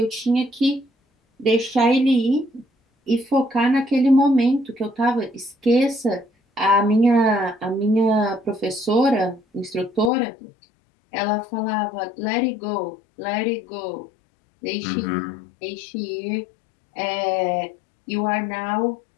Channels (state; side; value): drops out; right; at 10.1 s